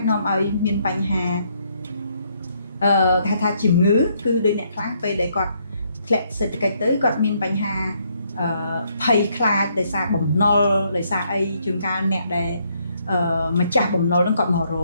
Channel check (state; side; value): inverted; both; correlation -0.72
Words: នាំឲ្យមានបញ្ហាគេថាជំងឺគឺដូចអ្នកខ្លះពេលដែលគាត់ធ្លាក់សេដ្ឋកិច្ចទៅគាត់មានបញ្ហាភ័យខ្លាចដោយសារបំណុលដោយសារអីជួនកាលអ្នកដែលម្ចាស់បំណុលហ្នឹងគាត់មករ